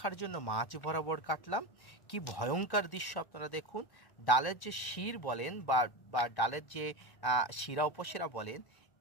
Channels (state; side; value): late; right; 1.5 ms